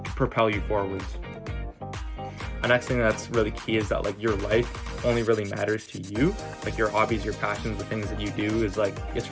propel you forwards. The next thing that's really key is that like your life only really matters to you. Like your hobbies, your passions, the things that you do is like it's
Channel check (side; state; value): both; identical; correlation 1.00